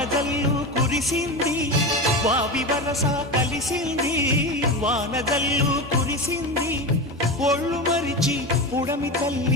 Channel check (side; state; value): both; normal; correlation 0.22